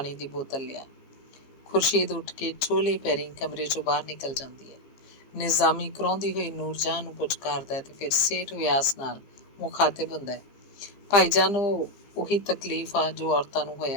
ਦੀ ਬੋਤਲ ਲਿਆ। ਖੁਰਸ਼ੀਦ ਉੱਠ ਕੇ ਚੋਲੇ ਪੈਰੀਂ ਕਮਰੇ 'ਚੋਂ ਬਾਹਰ ਨਿਕਲ ਜਾਂਦੀ ਹੈ। ਨਿਜ਼ਾਮੀ ਕਰਾਉਂਦੀ ਹੋਈ ਨੂਰਜਹਾਂ ਨੂੰ ਪੁਚਕਾਰਦਾ ਤੇ ਫਿਰ ਸੇਠ ਵਿਆਸ ਨਾਲ ਮੁਖਾਤਿਬ ਹੁੰਦਾ, ਭਾਈਜਾਨ ਉਹੀ ਤਕਲੀਫ ਆ ਜੋ ਔਰਤਾਂ ਨੂੰ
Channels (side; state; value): right; late; 15 ms